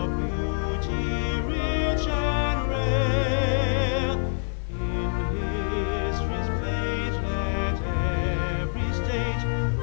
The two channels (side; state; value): right; silent; digital silence